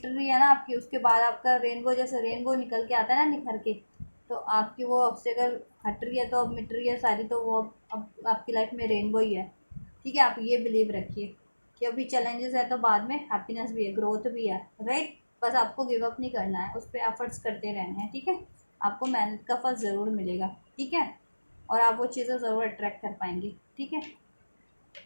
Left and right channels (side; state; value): both; inverted; correlation -1.00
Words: रही है ना आपकी, उसके बाद आपका रेनबो, जैसे रेनबो निकल के आता है ना निखर के, तो आपकी वो ऑब्स्टेकल हट रही है, तो अब मिट रही है सारी, तो वो अब आपकी लाइफ में रेनबो ही है, ठीक है। आप ये बिलीव रखिए कि अभी चैलेंजेस है तो बाद में हैप्पीनेस भी है, ग्रोथ भी है, राइट। बस आपको गिव अप नहीं करना है, उस पर एफर्ट्स करते रहने हैं, ठीक है। आपको मेहनत का फल ज़रूर मिलेगा, ठीक है। और आप वो चीज़ें ज़रूर अट्रैक्ट कर पाएंगे, ठीक है,